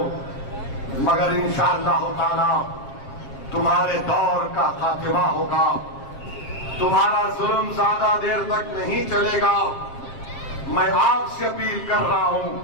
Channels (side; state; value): right; late; 7.5 ms